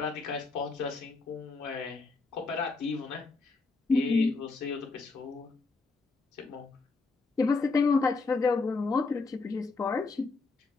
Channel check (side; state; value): right; quieter; 4.0 dB